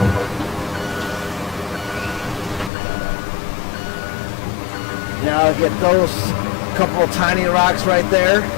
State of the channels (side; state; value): right; drops out; at 2.7 s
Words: Now I'll get those couple of tiny rocks right there